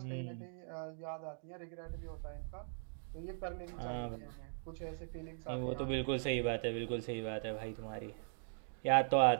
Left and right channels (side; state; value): left; silent; digital silence